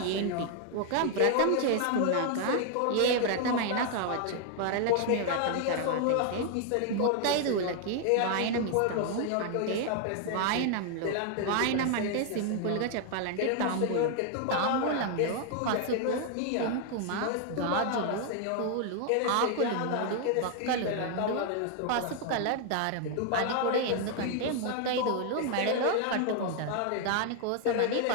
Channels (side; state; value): both; different; correlation 0.00